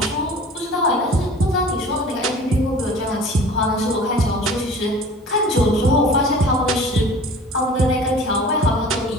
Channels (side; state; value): both; normal; correlation 0.44